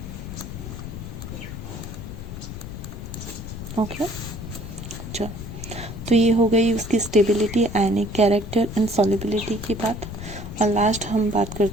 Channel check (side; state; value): left; noise; rumble, 9 dB below the sound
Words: Okay, चलो, तो ये हो गई उसकी stability, ionic character and solubility की बात। और लास्ट हम बात